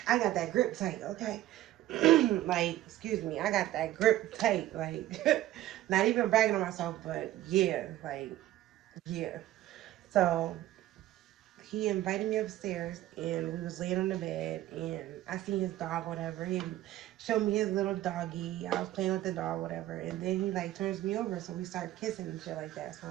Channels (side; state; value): left; quieter; 14.5 dB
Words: I got that grip tight, okay? Like, excuse me, I got that grip tight. Like, not even bragging on myself, but yeah, like, yeah. So he invited me upstairs, and we was laying on the bed, and I seen his dog, whatever. He showed me his little doggy. I was playing with the dog, whatever. And then he like turns me over, so we start kissing and shit like that. So